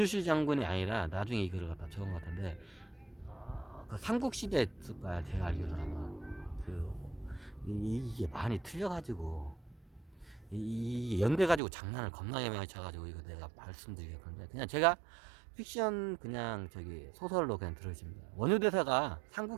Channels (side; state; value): left; drops out; at 11.6 s